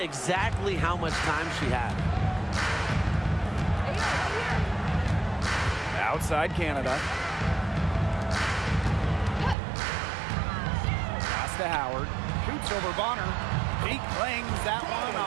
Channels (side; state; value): left; drops out; at 9.6 s